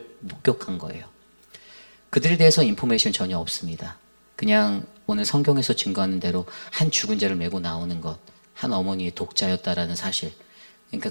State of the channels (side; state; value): both; inverted; correlation -1.00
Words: 목격한 거예요. 그들에 대해서 인포메이션 전혀 없습니다. 그냥 오늘 성경에서 증거하는 대로 한 죽은 자를 메고 나오는 것, 한 어머니의 독자였다라는 사실, 그러니까